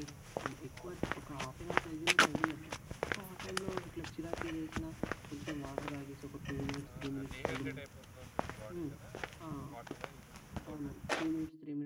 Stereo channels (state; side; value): identical; both; correlation 1.00